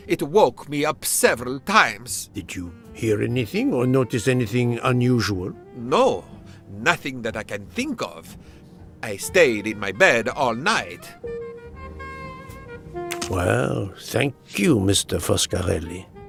It woke me up several times. Did you hear anything or notice anything unusual? No, nothing that I can think of. I stayed in my bed all night. Well, thank you, Mr. Foscarelli.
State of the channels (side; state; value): both; identical; correlation 1.00